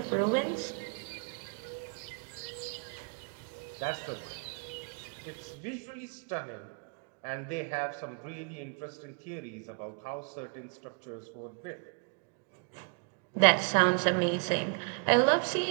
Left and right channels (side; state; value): left; quieter; 37.3 dB